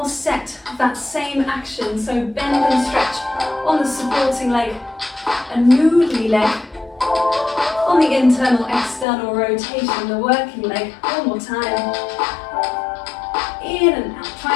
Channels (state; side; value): drops out; right; at 9.1 s